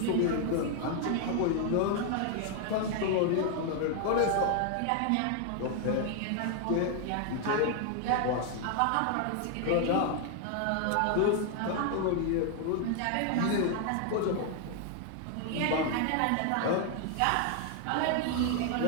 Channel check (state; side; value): different; both; correlation 0.00